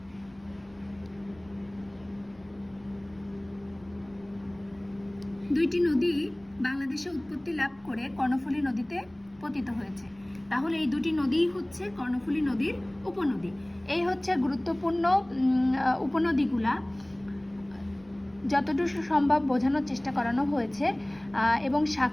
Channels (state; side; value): noise; right; rumble, 28 dB below the sound